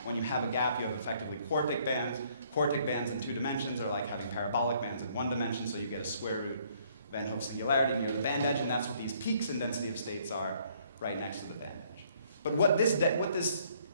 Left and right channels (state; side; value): inverted; both; correlation -0.64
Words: When you have a gap, you have effectively quartic bands. Quartic bands in 2 dimensions are like having parabolic bands in 1 dimension, so you get a square root Van Hoff singularity near the band edge, and that's what these peaks in density of states are right next to the band edge. But what this